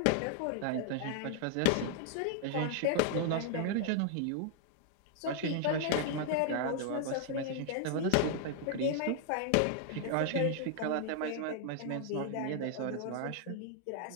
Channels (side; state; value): both; different; correlation 0.00